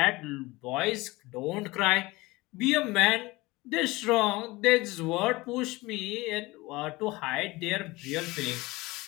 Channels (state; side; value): quieter; right; 21.5 dB